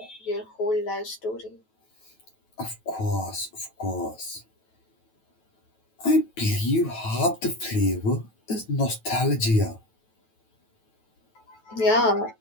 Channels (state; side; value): late; right; 9.2 ms